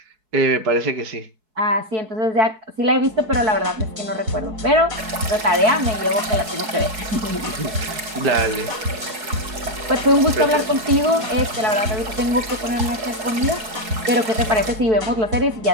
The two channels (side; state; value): left; late; 4.7 ms